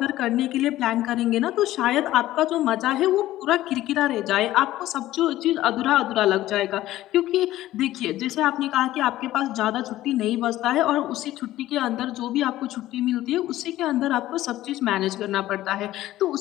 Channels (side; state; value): right; quieter; 15.0 dB